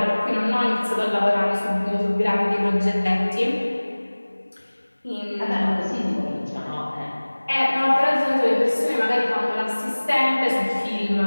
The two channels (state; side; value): inverted; both; correlation -1.00